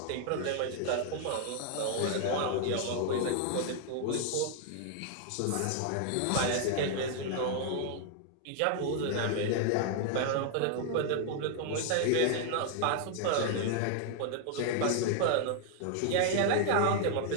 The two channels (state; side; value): different; both; correlation 0.00